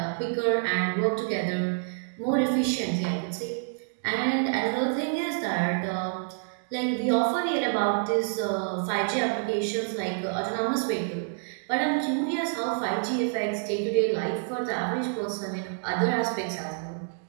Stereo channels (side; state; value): left; silent; digital silence